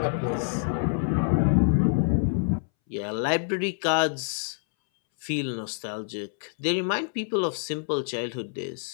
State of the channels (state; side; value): silent; right; 60 dB below the other